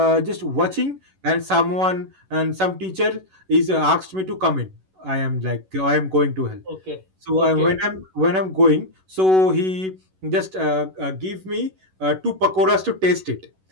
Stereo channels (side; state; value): left; late; 11 ms